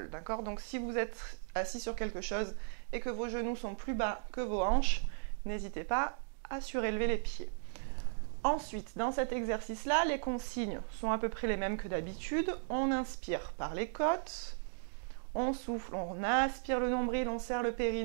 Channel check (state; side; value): silent; left; digital silence